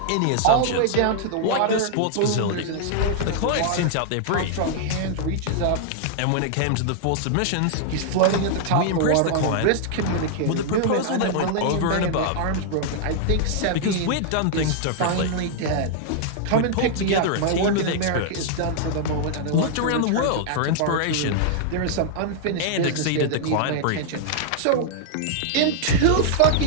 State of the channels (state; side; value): different; both; correlation -0.01